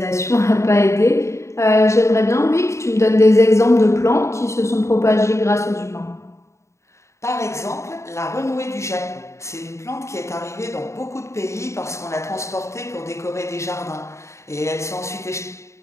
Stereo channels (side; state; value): right; late; 0.14 ms